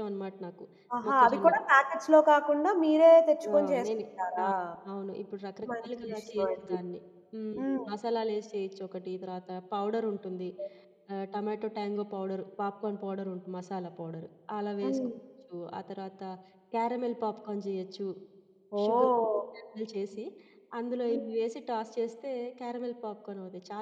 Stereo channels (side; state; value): both; identical; correlation 1.00